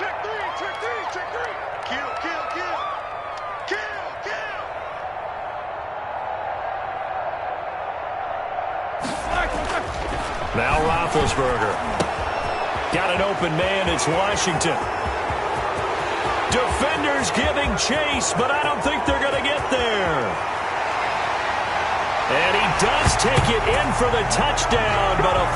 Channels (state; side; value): identical; both; correlation 1.00